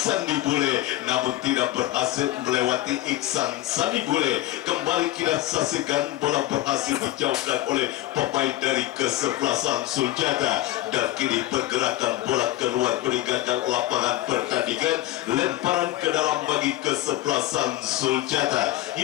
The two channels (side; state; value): right; quieter; 15.6 dB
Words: Bule namun tidak berhasil melewati Iksan Sandi Bule. Kembali kita saksikan bola berhasil dijauhkan oleh pemain dari kesebelasan Suljata dan kini pergerakan bola keluar meninggalkan lapangan pertandingan, lemparan ke dalam bagi kesebelasan Suljata.